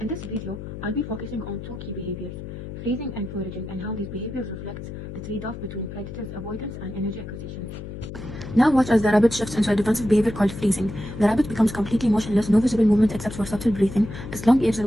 In this video, I'll be focusing on two key behaviors: freezing and foraging, and how these behaviors reflect the trade-off between predators' avoidance and energy acquisition. Now watch as the rabbit shifts into a defensive behavior called freezing. The rabbit becomes completely motionless, no visible movement except for subtle breathing. Its long ears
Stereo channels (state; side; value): noise; left; hum, 10 dB below the sound